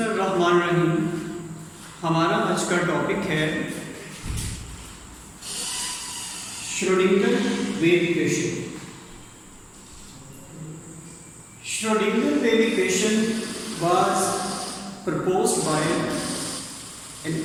हमारा आज का टॉपिक है Schrodinger wave equation. Schrodinger wave equation was proposed by an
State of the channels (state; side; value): identical; both; correlation 1.00